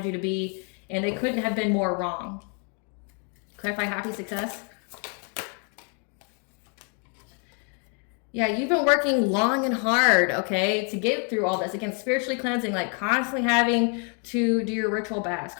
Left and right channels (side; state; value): right; quieter; 38.6 dB